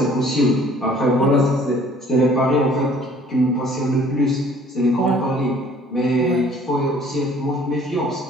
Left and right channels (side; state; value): both; normal; correlation 0.55